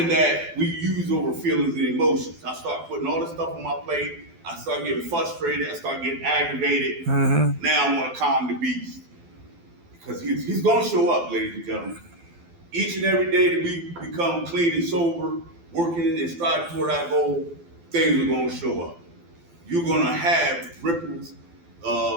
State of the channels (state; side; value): late; left; 12 ms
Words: that we use over feelings and emotions, I start putting all this stuff on my plate. I start getting frustrated. I start getting aggravated. Now I want to calm the beast. Because he's going to show up, ladies and gentlemen. Each and every day that we become clean and sober, working and striving toward our goal, things are going to show up. You're going to have ripples,